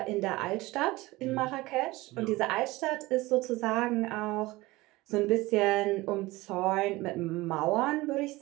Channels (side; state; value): left; quieter; 20.2 dB